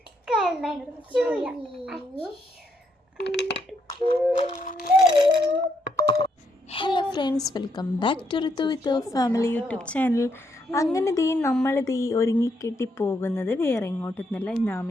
Hello friends, welcome back to Ritu with family YouTube channel. അങ്ങനെ നമ്മളിത് ഒരുങ്ങിക്കെട്ടി പോകുന്നത് വേറെ ഇങ്ങോട്ടൊന്നുമല്ല, ഇന്ന്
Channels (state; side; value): normal; both; correlation 0.76